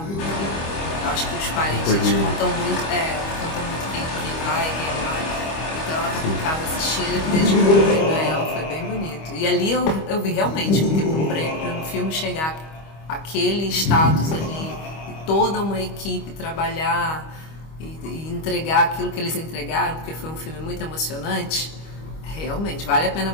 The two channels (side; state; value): right; late; 25 ms